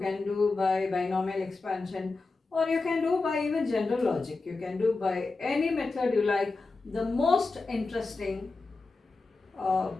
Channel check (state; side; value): quieter; right; 3.7 dB